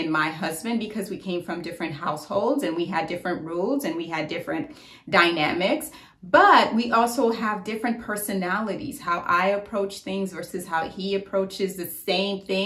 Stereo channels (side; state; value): both; identical; correlation 1.00